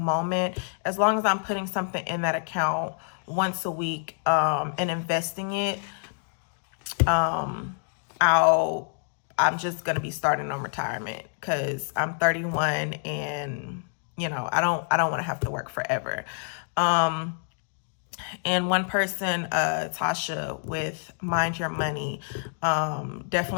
as long as I'm putting something in that account once a week and investing it, I'm just gonna be starting on retirement because I'm 31 and I don't want to have to work forever. And one person, Tasha with Mind Your Money,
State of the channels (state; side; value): silent; right; digital silence